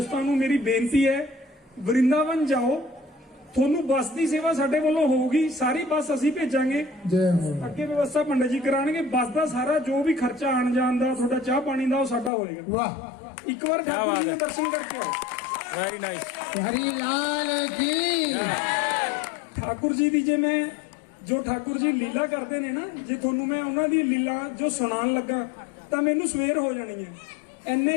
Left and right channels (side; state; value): right; drops out; at 12.3 s